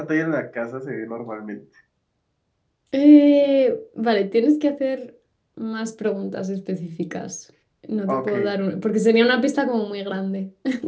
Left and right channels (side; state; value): both; identical; correlation 1.00